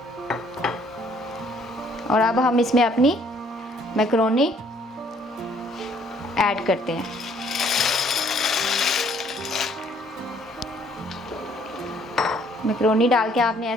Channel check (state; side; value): normal; both; correlation 0.62